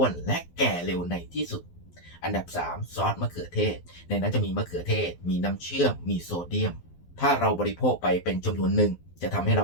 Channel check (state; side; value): late; right; 12 ms